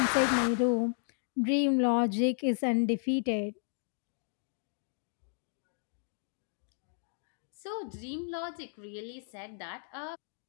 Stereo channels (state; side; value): silent; right; 55 dB below the other